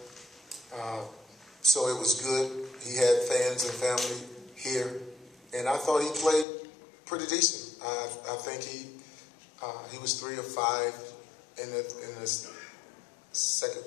so it was good. He had fans and family here, and I thought he played pretty decent. I think he was 3 of 5 in the second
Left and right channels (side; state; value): right; drops out; at 6.5 s